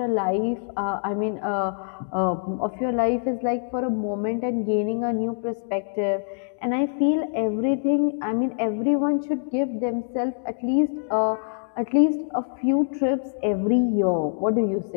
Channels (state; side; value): silent; right; digital silence